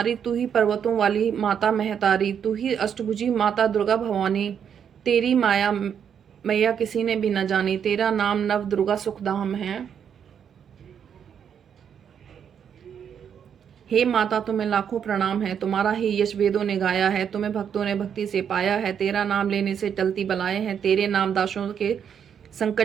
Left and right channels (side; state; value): left; quieter; 8.0 dB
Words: तू ही पर्वतों वाली माता महतारी। तू ही अष्टभुजी माता दुर्गा भवानी, तेरी माया मैया किसी ने भी न जानी। तेरा नाम नव दुर्गा सुखधाम है, हे माता तुम्हें लाखों प्रणाम है। तुम्हारा ही यश वेदों ने गाया है, तुम्हें भक्तों ने भक्ति से पाया है। तेरा नाम लेने से टलती बलाएं हैं, तेरे नाम दासों के